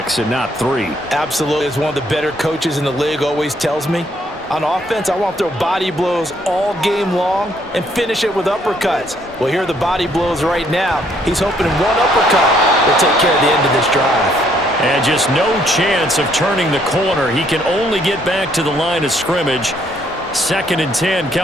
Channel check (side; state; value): both; normal; correlation 0.68